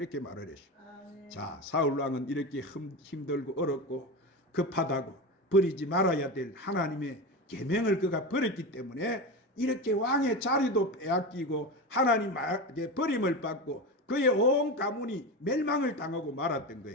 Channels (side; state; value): both; normal; correlation 0.22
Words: 말을 했어요. 자, 사울왕은 이렇게 힘들고 어렵고 급하다고 버리지 말아야 될 하나님의 계명을 그가 버렸기 때문에 이렇게 왕의 자리도 빼앗기고 하나님에게 버림을 받고 그의 온 가문이 멸망을 당하고 말았던